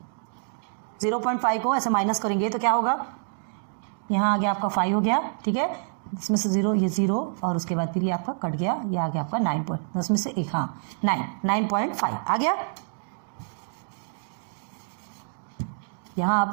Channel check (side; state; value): left; silent; digital silence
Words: 0.5 को ऐसे माइनस करेंगे तो क्या होगा, यहाँ आ गया आपका 5 हो गया, ठीक है। इसमें से 0 ये 0 और उसके बाद फिर ये आपका कट गया, ये आ गया आपका 9.10 में से एक, हाँ 9.5 आ गया। यहाँ